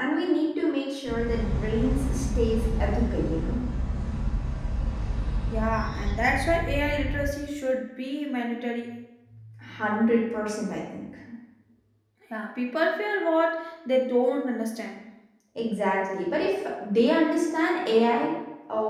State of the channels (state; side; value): identical; both; correlation 1.00